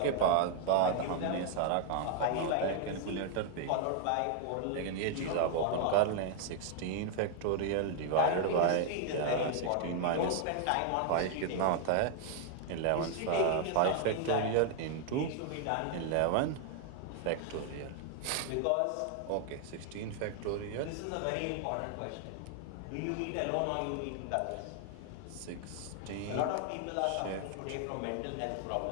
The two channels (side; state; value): both; different; correlation 0.00